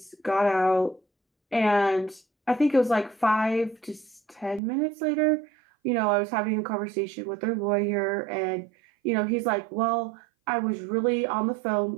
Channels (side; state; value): left; drops out; at 4.6 s